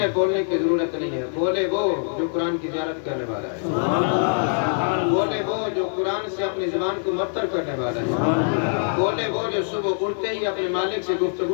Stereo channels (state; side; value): silent; right; 56 dB below the other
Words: بولنے کی ضرورت نہیں ہے بولے وہ جو قرآن کی زیارت کرنے والا ہے بولے وہ جو قرآن سے اپنی زبان کو معطر کرنے والا ہے بولے وہ جو صبح اٹھتے ہی اپنے مالک سے